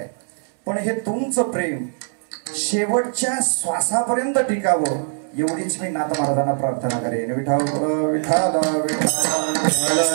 पण हे तुमचं प्रेम शेवटच्या श्वासापर्यंत टिकावं एवढीच मी नाथ महाराजांना प्रार्थना करेन. विठाल विठाल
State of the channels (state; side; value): silent; left; 65 dB below the other